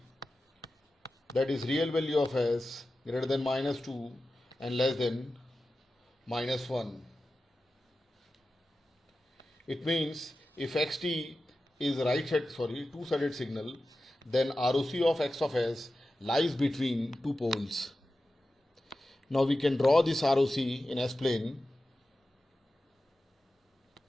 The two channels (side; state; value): both; normal; correlation 0.93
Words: that is real value of s greater than minus 2 and less than minus 1. It means if xt is two-sided signal, then ROC of x of s lies between two poles. Now we can draw this ROC in S-plane.